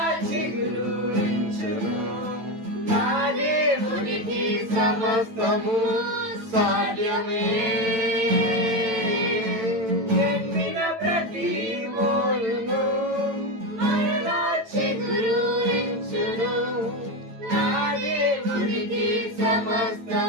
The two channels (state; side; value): late; left; 9.0 ms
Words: చిగురించును. నా దేవునికి సమస్తము సాధ్యమే. ఎండిన ప్రతి మోడును మరలా చిగురించును. నా దేవునికి